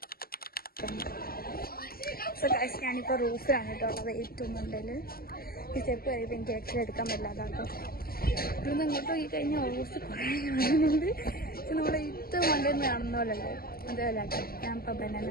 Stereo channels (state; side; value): late; right; 0.44 ms